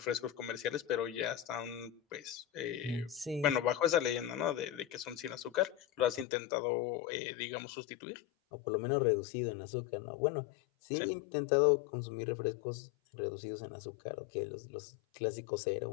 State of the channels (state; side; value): drops out; right; at 6.2 s